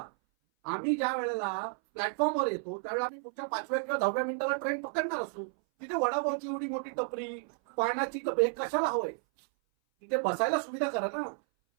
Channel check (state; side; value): silent; left; 56 dB below the other